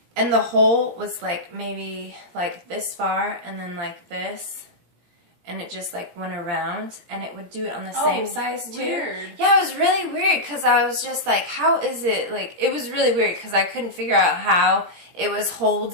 hole was, like, maybe, like, this far, and then, like, this, and it just, like, went around, and it would do it on the same size, too. Weird. Yeah, it was really weird, because I was just, like, how is it, like, it was really weird, because I couldn't figure out how it was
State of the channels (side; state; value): left; late; 17 ms